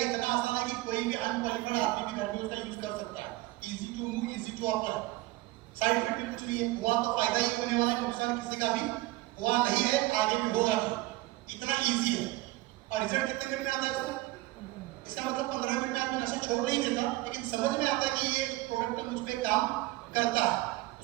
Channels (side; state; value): left; quieter; 19.4 dB